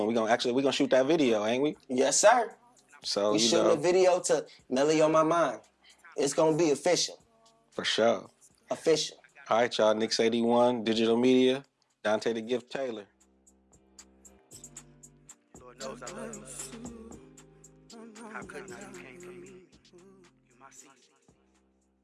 We're gonna shoot that video, ain't we? Yes, sir. So, We you shooting know, a video to Melly on my mind. It's gonna be official. for sure. Official. All right, y'all. nics81, digital media. Dante the Gift Taylor. Lord knows I love you. How couldn't I? You came for me. You my season.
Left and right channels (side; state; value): both; identical; correlation 1.00